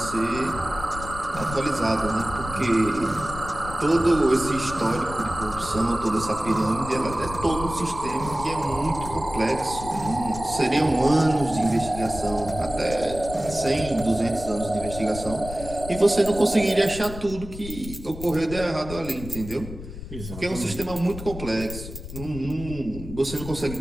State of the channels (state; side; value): noise; left; rumble, 11 dB below the sound